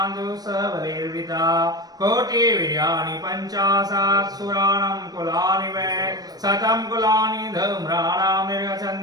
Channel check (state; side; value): late; left; 0.19 ms